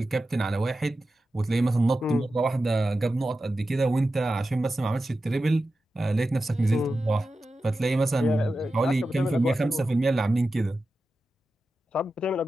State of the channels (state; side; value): normal; both; correlation 0.92